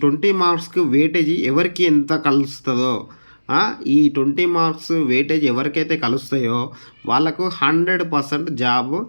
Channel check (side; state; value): both; inverted; correlation -1.00